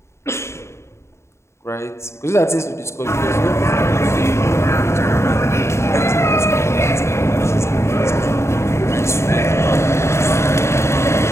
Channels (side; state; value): right; late; 0.13 ms